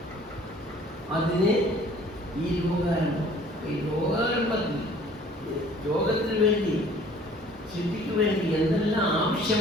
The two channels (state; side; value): normal; both; correlation 0.53